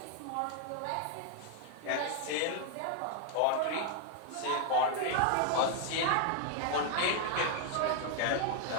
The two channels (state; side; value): different; both; correlation 0.00